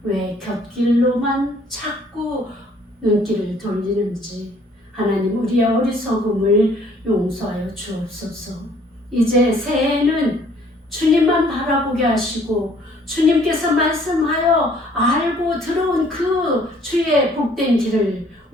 왜 곁길로만 자꾸 눈길을 돌리는지 하나님 우리의 어리석음을 용서하여 주옵소서. 이제 새해에는 주님만 바라보게 하시고 주님께서 말씀하여 알고 들어온 그 주의 복된 길을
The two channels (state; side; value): normal; both; correlation 0.60